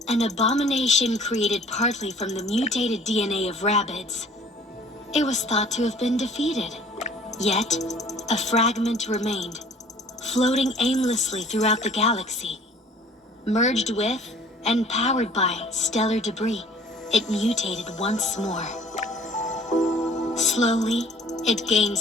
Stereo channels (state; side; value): normal; both; correlation 0.52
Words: An abomination created partly from the mutated DNA of rabbits. It was thought to have been defeated. Yet, a fragment remained, floating aimlessly throughout the galaxy. Merged with and powered by stellar debris, it mutated once more. Slowly, it gained